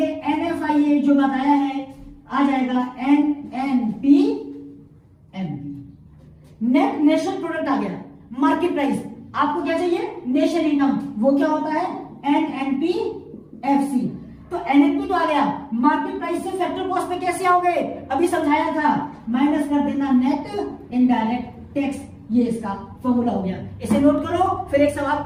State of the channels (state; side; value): identical; both; correlation 1.00